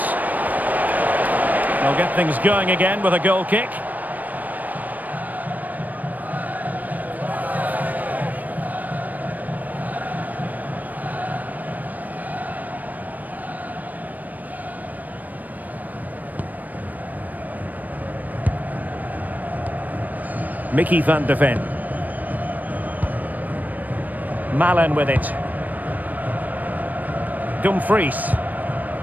They'll get things going again with a goal kick. Mickey van de Ven. Malen with it. Dumfries.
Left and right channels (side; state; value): left; late; 0.081 ms